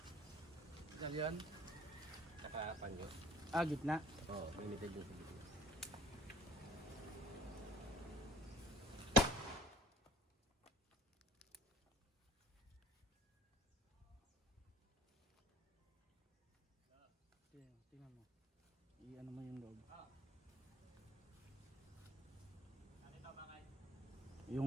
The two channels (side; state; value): both; normal; correlation 0.48